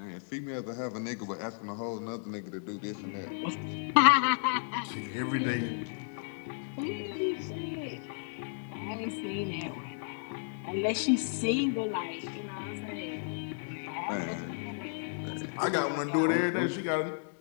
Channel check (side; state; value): right; silent; 56 dB below the other